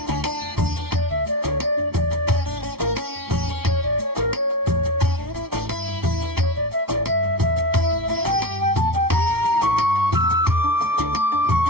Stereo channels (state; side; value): late; left; 0.95 ms